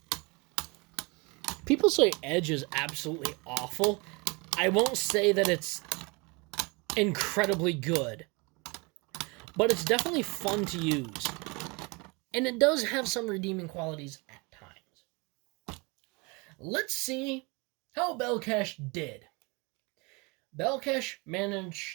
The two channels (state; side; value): quieter; left; 28.3 dB